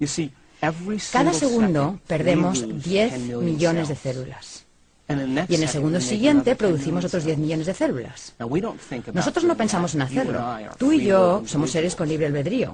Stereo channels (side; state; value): both; identical; correlation 1.00